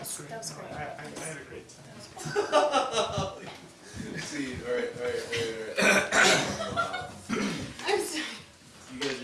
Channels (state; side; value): identical; both; correlation 1.00